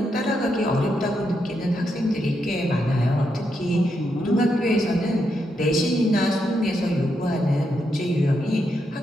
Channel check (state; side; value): normal; both; correlation 0.82